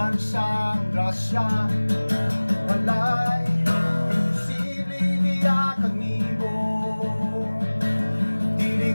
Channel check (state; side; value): inverted; both; correlation -1.00